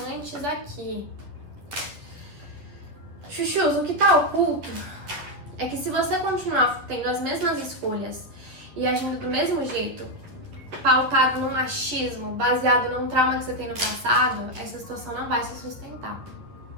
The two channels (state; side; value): late; left; 11 ms